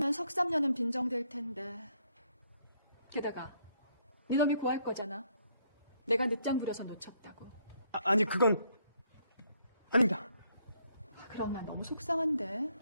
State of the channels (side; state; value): both; inverted; correlation -0.71